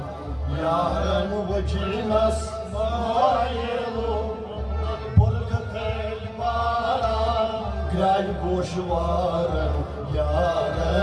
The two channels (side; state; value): both; identical; correlation 1.00